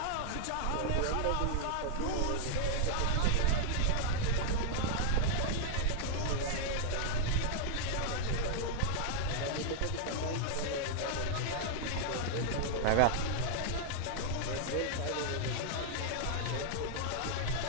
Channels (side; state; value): both; different; correlation -0.01